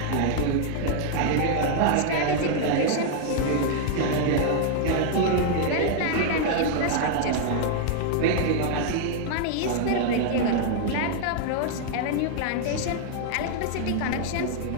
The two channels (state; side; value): different; both; correlation 0.00